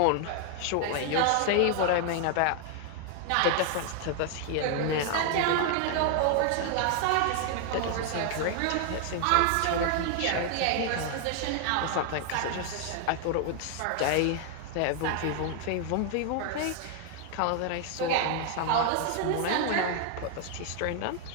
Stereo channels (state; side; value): different; both; correlation 0.00